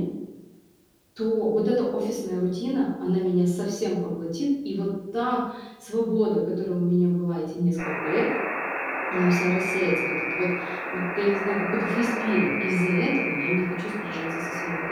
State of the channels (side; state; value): both; identical; correlation 1.00